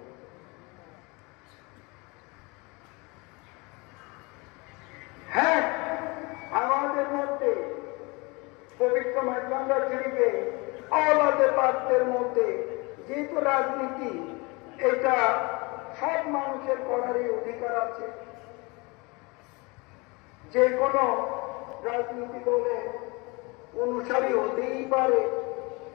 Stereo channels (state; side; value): quieter; right; 27.0 dB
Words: মাইজভান্ডার শরীফে আওলাদে পাকদের মধ্যে যেহেতু রাজনীতি এটা সব মানুষের করারই অধিকার আছে, যে কোনো রাজনীতি দলে অনুসারী হতেই পারে,